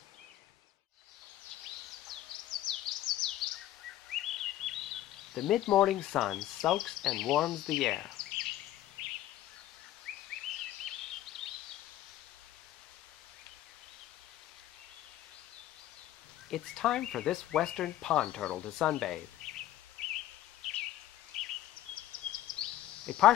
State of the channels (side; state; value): right; quieter; 13.7 dB